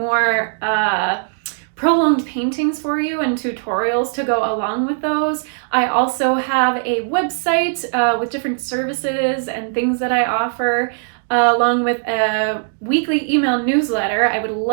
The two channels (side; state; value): left; silent; digital silence